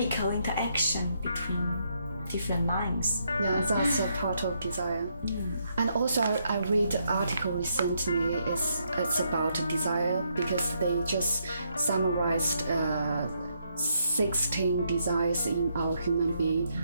interaction between different minds. Yeah, that's a part of desire. And also, I read an article recently. It's about desire because they just summarized 16 desires in our human being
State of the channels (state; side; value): inverted; both; correlation -0.76